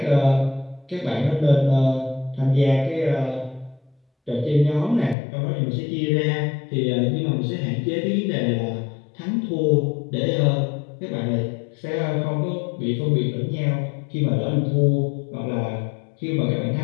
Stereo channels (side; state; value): right; drops out; at 5.2 s